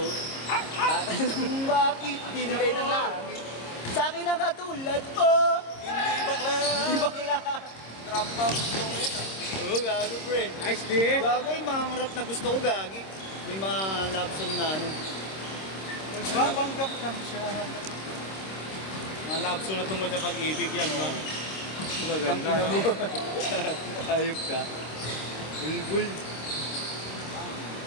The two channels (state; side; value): late; right; 26 ms